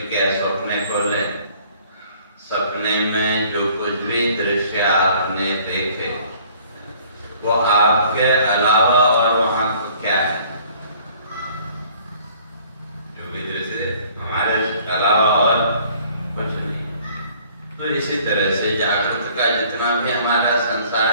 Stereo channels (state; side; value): inverted; both; correlation -0.56